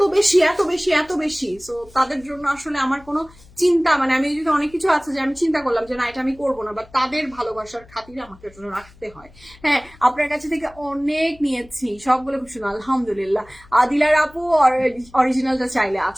বেশি এত বেশি এত বেশি। সো তাদের জন্য আসলে আমার কোনো চিন্তা, মানে আমি যদি অনেক কিছু আছে যে আমি চিন্তা করলাম যে না এটা আমি করবো না, বা তাদের ভালোবাসার খাতিরে আমাকে জন্য রাখতে হয়। হ্যাঁ, আপনার কাছে থেকে অনেক নিয়েছি, সবগুলো খুব সুন্দর আলহামদুলিল্লাহ। আদিলার আপু অরিজিনালটা চাইলে,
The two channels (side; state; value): left; noise; hum, 25 dB below the sound